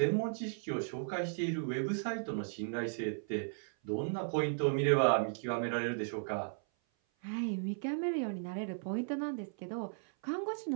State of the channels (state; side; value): silent; left; 54 dB below the other